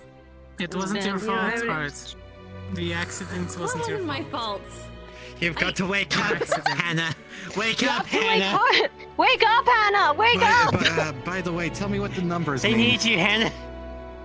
It wasn't your You know, I fault, would- Hart. The accident What wasn't your wasn't my fault. fault? You've got to wake up, Hannah. Wake You up, have to wake Hannah. up! Wake up, Hannah! Wake up! By the way, tell me what the numbers They mean. need you, Hannah.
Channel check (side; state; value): both; identical; correlation 1.00